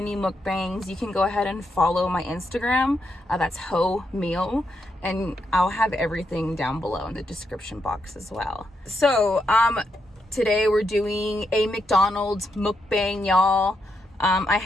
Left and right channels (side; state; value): both; normal; correlation 0.82